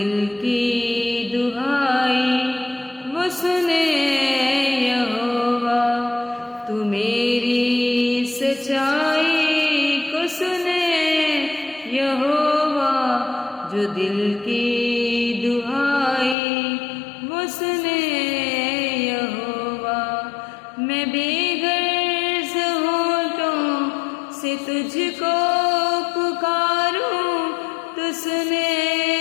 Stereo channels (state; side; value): drops out; right; at 16.4 s